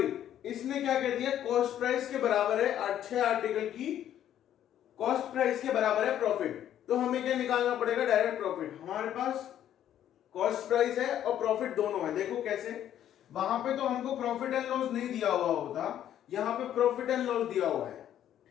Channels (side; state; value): right; quieter; 10.9 dB